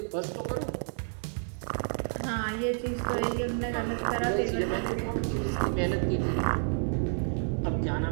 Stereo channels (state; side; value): silent; left; 58 dB below the other